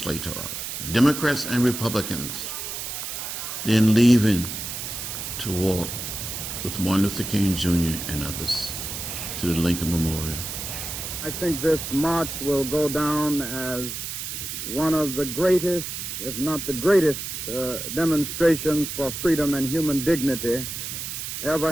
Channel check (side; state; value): right; noise; hiss, 6 dB below the sound